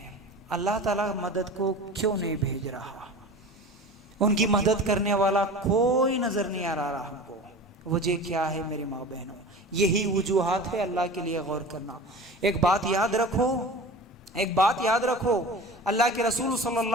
اللہ تعالیٰ مدد کو کیوں نہیں بھیج رہا؟ ان کی مدد کرنے والا کوئی نظر نہیں آ رہا ہم کو، وجہ کیا ہے میری ماں بہنوں؟ یہی وجوہات ہے، اللہ کے لیے غور کرنا۔ ایک بات یاد رکھو، اللہ کے رسول صلی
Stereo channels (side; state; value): both; normal; correlation 0.36